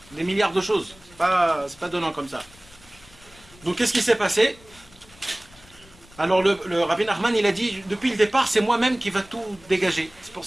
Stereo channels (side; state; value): left; noise; rumble, 25 dB below the sound